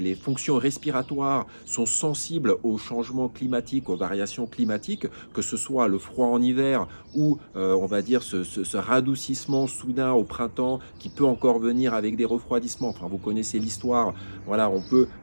fonctions respiratoires sont sensibles aux changements climatiques, aux variations climatiques, que ce soit le froid en hiver ou on va dire ce radoucissement soudain au printemps qui peut encore venir avec des refroidissements. Enfin, vous connaissez l'histoire, voilà, on peut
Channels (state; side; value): inverted; both; correlation -1.00